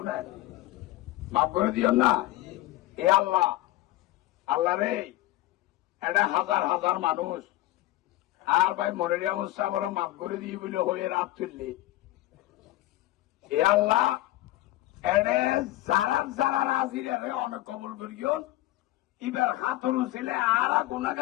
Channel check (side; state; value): right; quieter; 16.5 dB